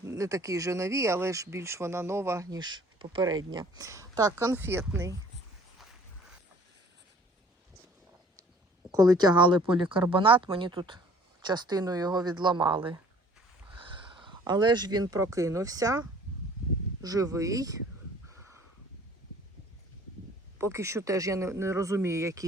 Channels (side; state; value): both; normal; correlation 0.53